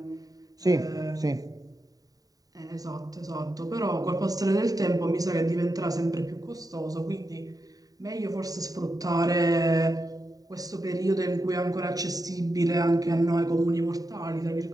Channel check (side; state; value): left; late; 0.18 ms